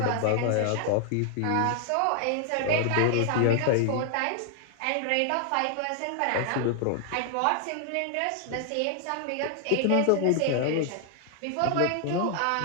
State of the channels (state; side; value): different; both; correlation 0.00